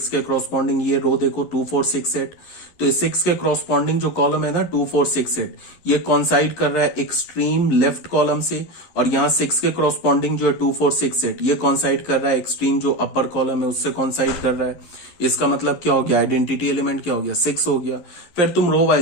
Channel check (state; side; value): late; right; 11 ms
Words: के क्रॉसपॉन्डिंग ये रो देखो 2 4 6 सेट। तो 6 के क्रॉसपॉन्डिंग जो कॉलम है ना 2 4 6 सेट, ये कॉन्साइड कर रहा है एक्सट्रीम लेफ्ट कॉलम से। और यहाँ 6 के क्रॉसपॉन्डिंग जो है 2 4 6 सेट, ये कॉन्साइड कर रहा है एक्सट्रीम जो अपर कॉलम है उससे कॉन्साइड कर रहा है। इसका मतलब क्या हो गया, आइडेंटिटी एलिमेंट क्या हो गया, 6 हो गया। फिर तुम रो